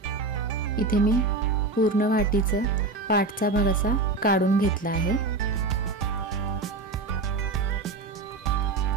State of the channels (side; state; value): left; quieter; 3.6 dB